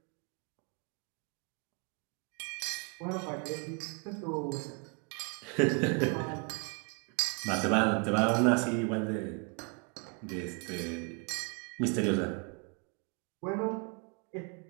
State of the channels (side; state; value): left; quieter; 34.9 dB